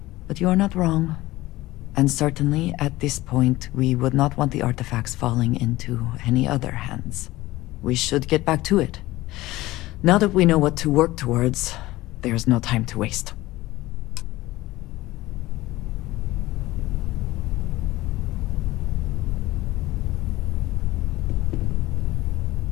But you are not wrong. And certainly, at this point, we would not want the artifacts falling into any other hands. We should get back to it. Now that we know what to work towards, there's no time to waste.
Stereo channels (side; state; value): right; quieter; 18.0 dB